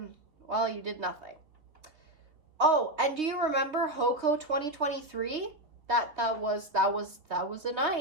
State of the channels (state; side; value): late; left; 3.4 ms